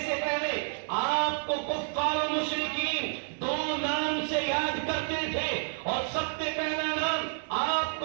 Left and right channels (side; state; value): left; silent; 58 dB below the other